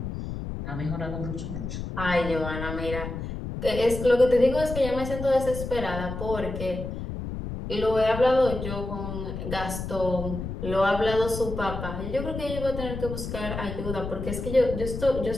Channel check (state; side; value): noise; left; rumble, 6 dB below the sound